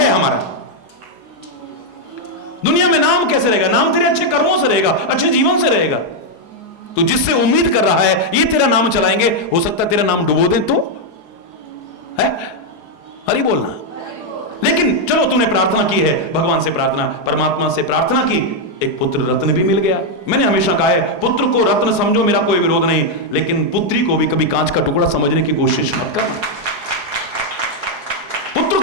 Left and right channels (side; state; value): right; late; 4.8 ms